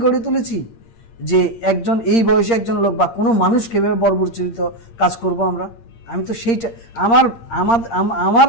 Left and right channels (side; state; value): right; late; 8.7 ms